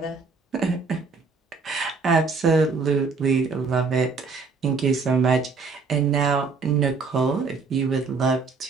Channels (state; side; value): quieter; left; 4.6 dB